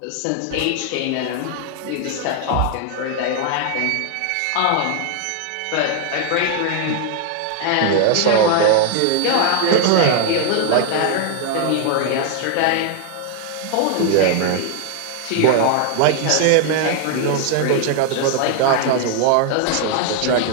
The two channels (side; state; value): both; different; correlation 0.00